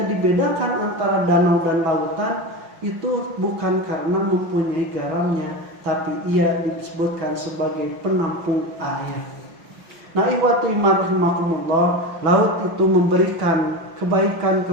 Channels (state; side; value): late; left; 6.0 ms